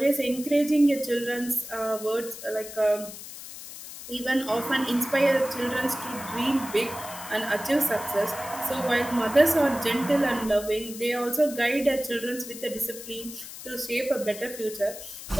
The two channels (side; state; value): left; noise; hiss, 12 dB below the sound